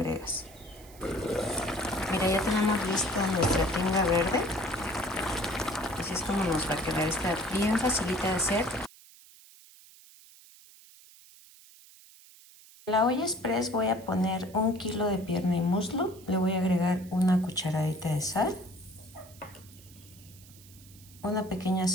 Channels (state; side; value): noise; right; hiss, 22 dB below the sound